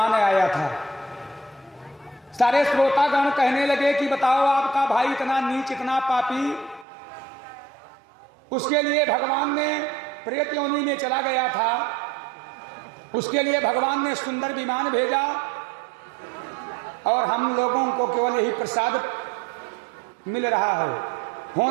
आया था। सारे श्रोतागण कहने लगे कि बताओ आपका भाई इतना नीच, इतना पापी, उसके लिए भगवान ने प्रेत योनि में चला गया था, उसके लिए भगवान ने सुंदर विमान भेजा और हम लोगों को केवल यही प्रसाद मिल रहा है।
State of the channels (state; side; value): drops out; left; at 6.9 s